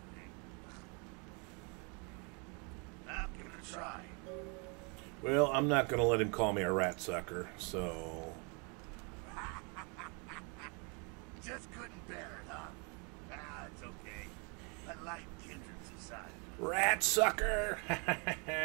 thing. Now, give it a try. Well, I'm not going to let him call me a rat sucker, so... Just couldn't bear it, huh? Ah, it's okay. A light kindred society. Rat sucker! Keep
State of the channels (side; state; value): left; quieter; 34.1 dB